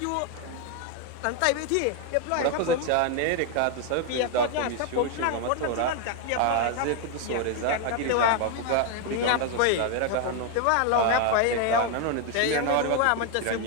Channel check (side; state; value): both; different; correlation 0.01